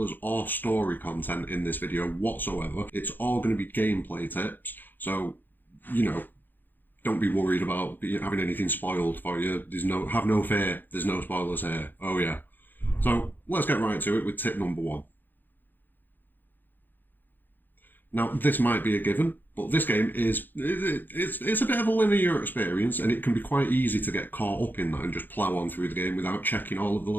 or story content in this video whatsoever. It's all going to be gameplay tips, so, don't be worried about having anything spoiled for you. Have no fear, there's no spoilers here. Oh yeah. So let's get right to it with tip number 1. Now, this might be a given, but this game it's a bit of a linear experience, and it can be quite easy to get caught up in that and just plough on through the game without checking all of the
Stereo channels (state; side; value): late; right; 0.090 ms